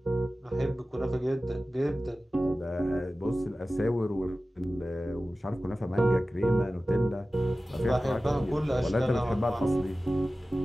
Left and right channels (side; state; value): both; normal; correlation 0.96